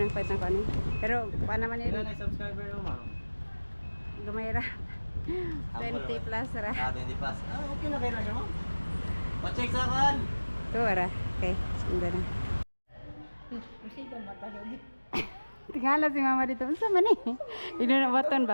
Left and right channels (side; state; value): both; inverted; correlation -1.00